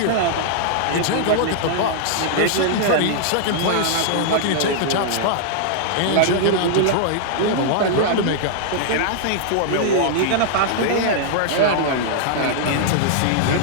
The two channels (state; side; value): different; both; correlation -0.01